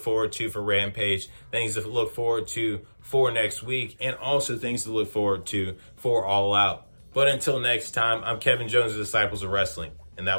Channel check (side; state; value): both; inverted; correlation -1.00